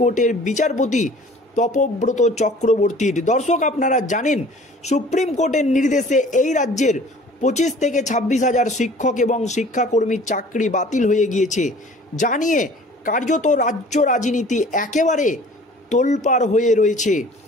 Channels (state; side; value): normal; both; correlation 0.49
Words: বিচারপতি তপব্রত চক্রবর্তীর। দর্শক, আপনারা জানেন সুপ্রিম কোর্টের নির্দেশে এই রাজ্যের 25 থেকে 26 হাজার শিক্ষক এবং শিক্ষাকর্মীর চাকরি বাতিল হয়ে গিয়েছে, জানিয়ে কার্যত রাজ্য রাজনীতি একেবারে তোলপাড় হয়ে রয়েছে।